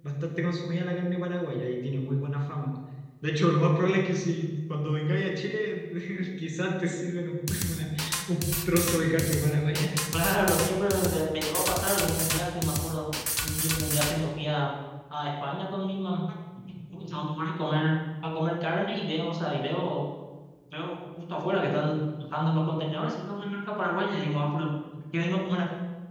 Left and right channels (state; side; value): identical; both; correlation 1.00